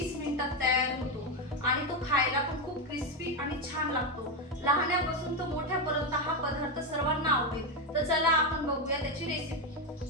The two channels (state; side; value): normal; both; correlation 0.08